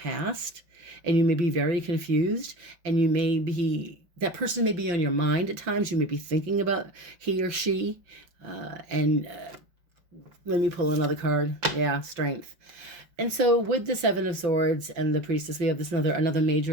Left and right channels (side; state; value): left; late; 5.8 ms